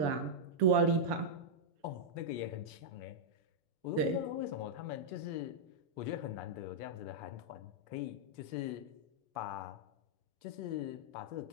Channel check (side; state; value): left; late; 7.0 ms